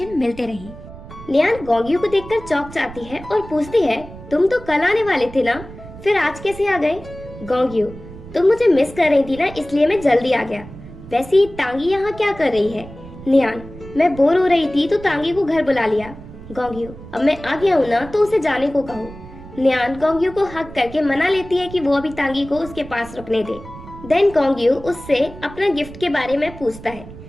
मिलते रहे। नियान गोंग्यू को देखकर चौंक जाती है और पूछती है, तुम तो कल आने वाले थे ना, फिर आज कैसे आ गए? गोंग्यू, तुम मुझे मिस कर रही थी ना, इसलिए मैं जल्दी आ गया। वैसे ये तांगी यहाँ क्या कर रही है? नियान, मैं बोर हो रही थी तो तांगी को घर बुला लिया। गोंग्यू, अब मैं आ गया हूँ ना तो उसे जाने को कहो। नियान गोंग्यू को हक करके मना लेती है कि वो अभी तांगी को उसके पास रुकने दे। देन गोंग्यू उससे अपना गिफ्ट के बारे में पूछता है।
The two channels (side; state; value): right; noise; rumble, 16 dB below the sound